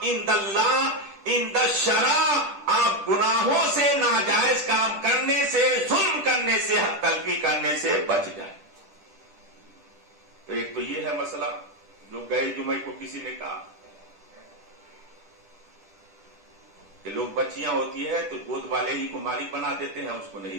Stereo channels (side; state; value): left; late; 10 ms